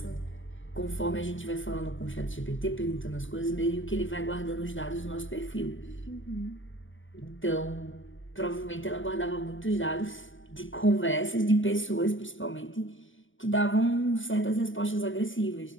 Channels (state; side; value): late; right; 0.57 ms